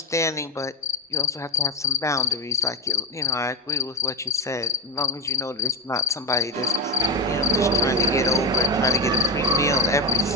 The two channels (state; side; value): normal; both; correlation 0.15